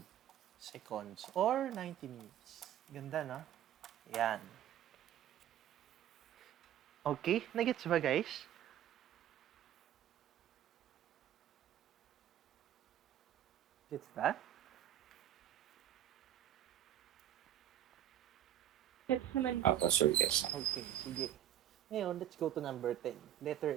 seconds or 90 minutes. Ganda, no? Yan. Okay, nagets ba guys? Gets ba? Yes naman. Sir, yes. Okay, sige. Ngayon, let's go to number 10.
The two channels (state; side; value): quieter; left; 11.4 dB